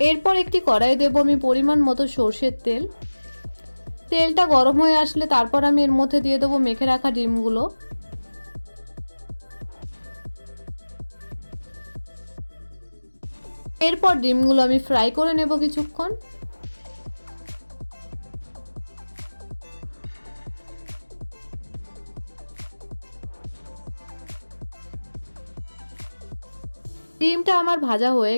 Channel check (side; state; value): both; inverted; correlation -1.00